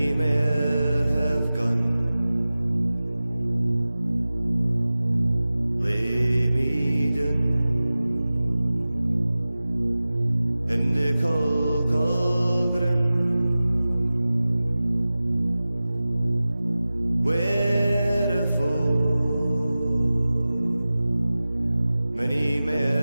mair have gone. Lay me down in the caul groon, wherefore many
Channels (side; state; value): both; inverted; correlation -0.97